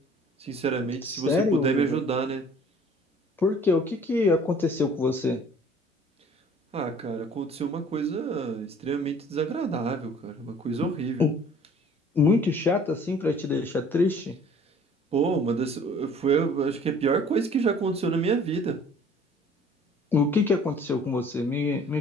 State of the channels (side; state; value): both; normal; correlation 0.52